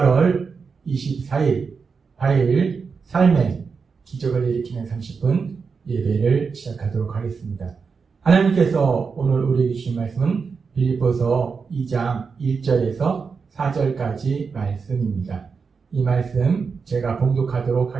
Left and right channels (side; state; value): left; quieter; 5.3 dB